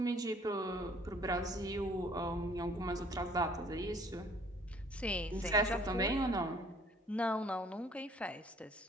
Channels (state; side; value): normal; both; correlation 0.57